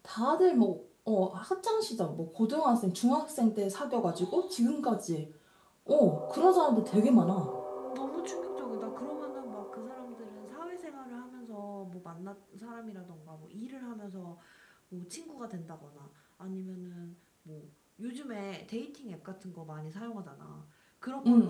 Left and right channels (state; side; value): identical; both; correlation 1.00